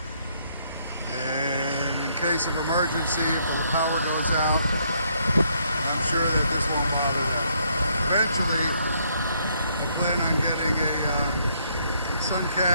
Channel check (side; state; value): both; inverted; correlation -0.70